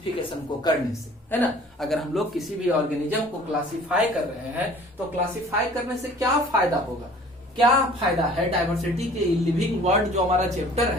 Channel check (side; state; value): both; normal; correlation 0.50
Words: को करने से, है ना? अगर हम लोग किसी भी ऑर्गेनिज्म को क्लासिफाई कर रहे हैं तो क्लासिफाई करने से क्या फायदा होगा, क्या फायदा है? डाइवर्सिटी के लिविंग वर्ल्ड जो हमारा चैप्टर